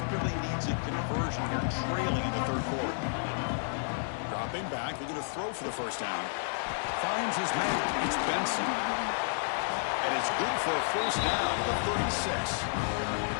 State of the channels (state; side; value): silent; right; digital silence